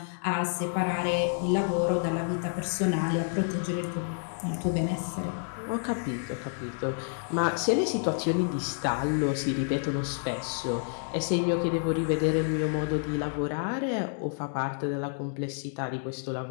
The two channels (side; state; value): right; silent; digital silence